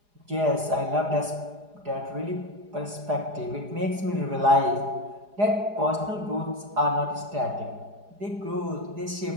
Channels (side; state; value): left; late; 4.9 ms